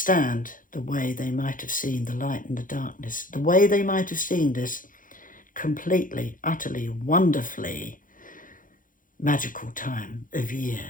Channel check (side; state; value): right; late; 0.39 ms